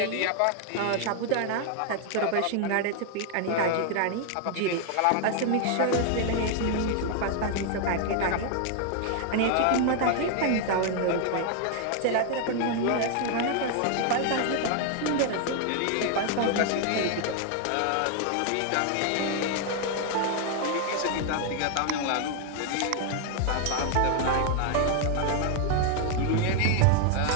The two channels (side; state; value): both; different; correlation 0.00